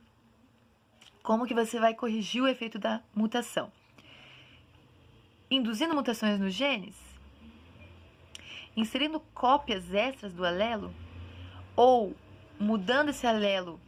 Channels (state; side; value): identical; both; correlation 1.00